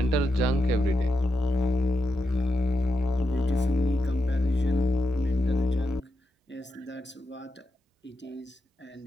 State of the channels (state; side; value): normal; both; correlation 0.86